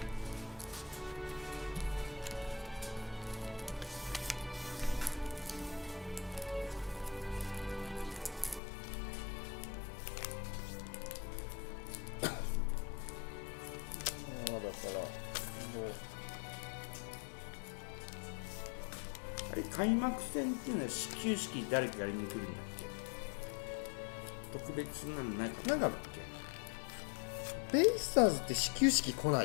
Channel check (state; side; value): drops out; right; at 8.6 s